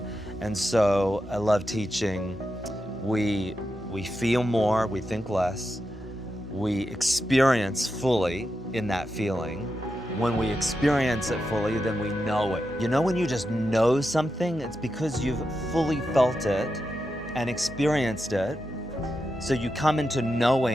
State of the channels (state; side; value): normal; both; correlation 0.88